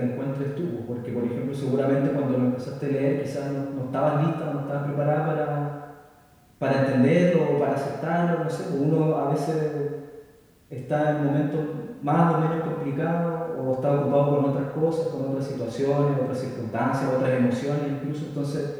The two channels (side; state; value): both; identical; correlation 1.00